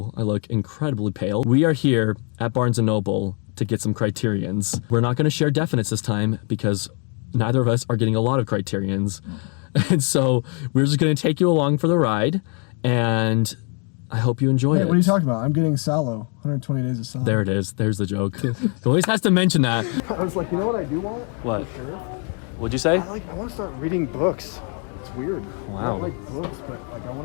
I look incredibly pale. We are here at Barnes & Noble to get some Criterions. We're not going to share definites this time because neither of us are getting a lot of Criterions. And so we're just going to take you along for the ride, and I hope you enjoy it. What are you talking about? I'm getting Salo. 120 days of Salo. There it is. There's the joke. He always has to mention that. I was like, you know what I do want? What? For sure? What'd you say? I want to start reading books. It's weird. Wow. I don't like books, but like I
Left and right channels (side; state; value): right; quieter; 37.6 dB